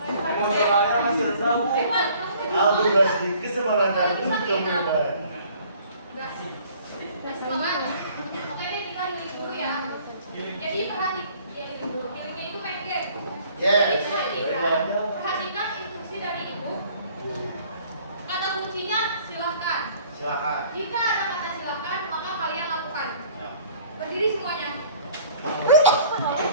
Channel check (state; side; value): inverted; both; correlation -0.55